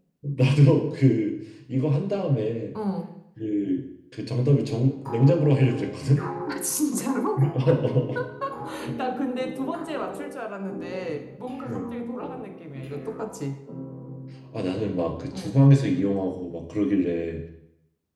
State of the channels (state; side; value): identical; both; correlation 1.00